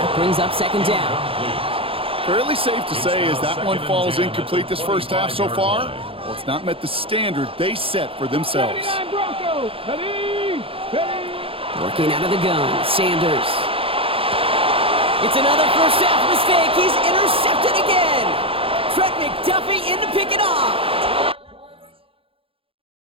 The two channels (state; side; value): late; left; 0.27 ms